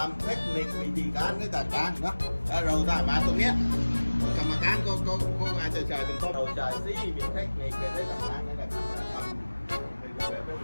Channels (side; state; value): both; inverted; correlation -1.00